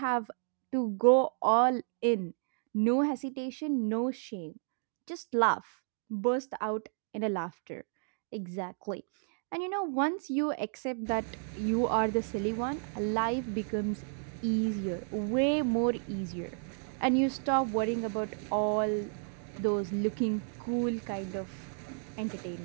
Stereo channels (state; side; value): silent; left; 56 dB below the other